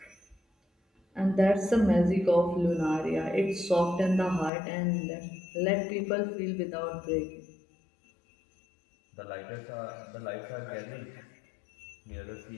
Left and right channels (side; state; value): right; drops out; at 4.5 s